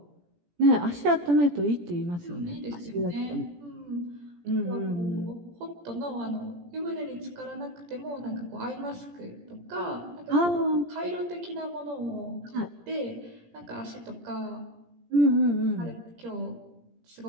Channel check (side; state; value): left; late; 17 ms